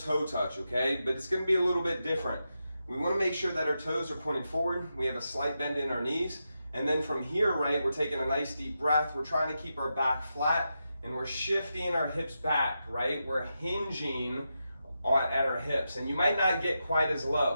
touch, okay? But it's going to be a little bit different. We want to make sure that our toes are pointing forward. We have a slight bend in our knees. And then from here, right, we're taking a nice deep breath. We're trying to keep our back flat and we're shifting our hips back, right? We're hinging at our hips, and you might not get quite as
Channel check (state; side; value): inverted; both; correlation -0.88